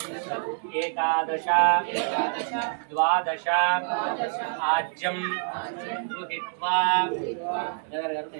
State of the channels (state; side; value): silent; left; 60 dB below the other